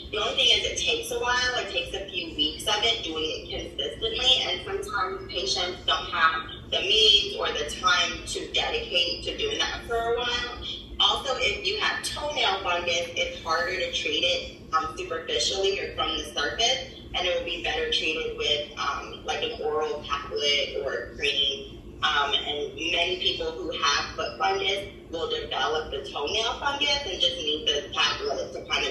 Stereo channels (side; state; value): both; identical; correlation 1.00